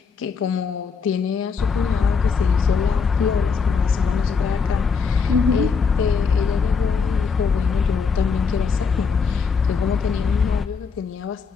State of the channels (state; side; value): quieter; right; 5.4 dB